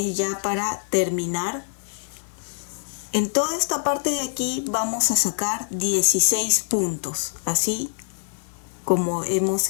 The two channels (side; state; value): right; silent; digital silence